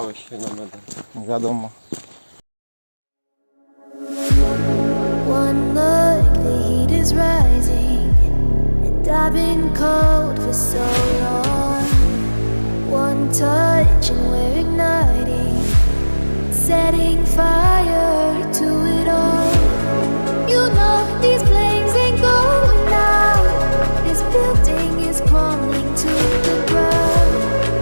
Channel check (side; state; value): both; inverted; correlation -1.00